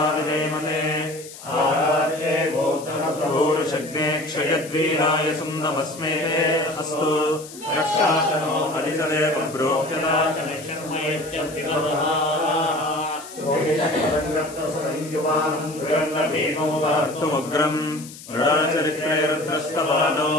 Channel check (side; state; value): left; noise; hiss, 16 dB below the sound